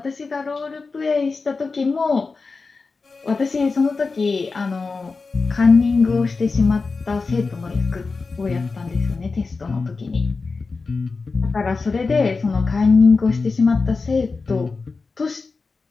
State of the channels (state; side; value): quieter; right; 4.2 dB